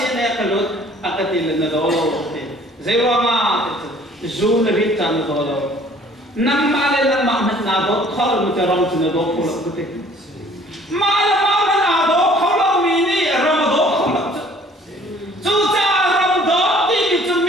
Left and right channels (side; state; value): both; normal; correlation 0.55